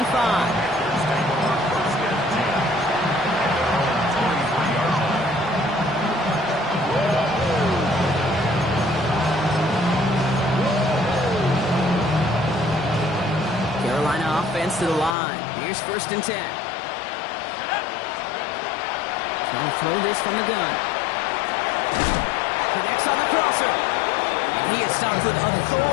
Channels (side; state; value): right; drops out; at 15.2 s